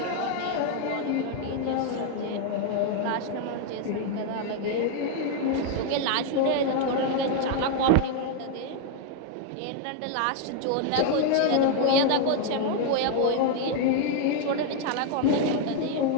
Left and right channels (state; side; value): different; both; correlation 0.00